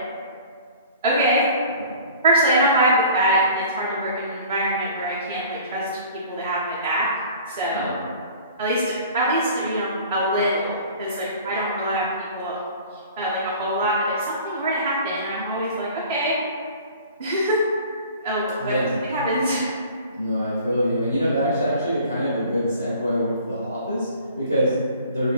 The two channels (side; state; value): both; inverted; correlation -0.46